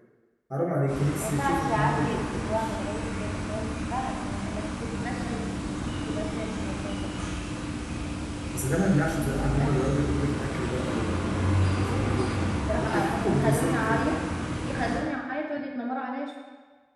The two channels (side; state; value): both; identical; correlation 1.00